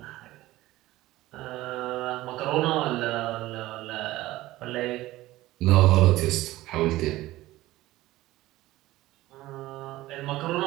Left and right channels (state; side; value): quieter; left; 17.0 dB